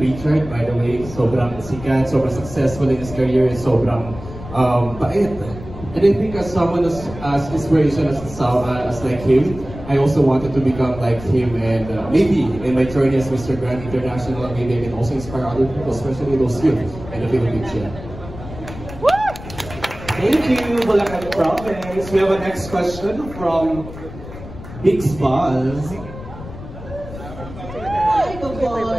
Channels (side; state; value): left; noise; rumble, 13 dB below the sound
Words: by the way. Sobrang sikat, sobrang successful in his career, sobrang bait. And I think as someone as inspiration as like him, I also wanted to become like him, and maybe in my journey as Mr. Grand International, maybe I can also inspire other people, especially those youth in the Philippines. Yeah. Thank you, Bulacan Province. We have a next question from Biggs Buzz. Hi, good